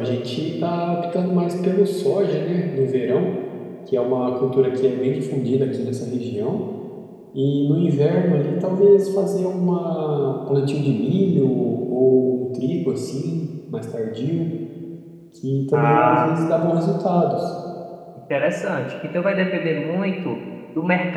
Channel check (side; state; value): both; identical; correlation 1.00